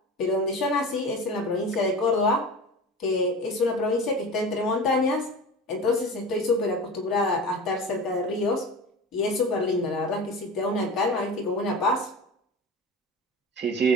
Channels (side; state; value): both; normal; correlation 0.31